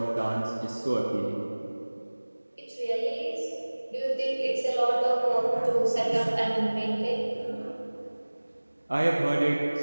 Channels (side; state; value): both; inverted; correlation -1.00